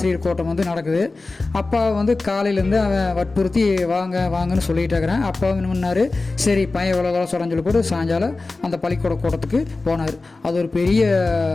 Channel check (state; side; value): quieter; right; 3.4 dB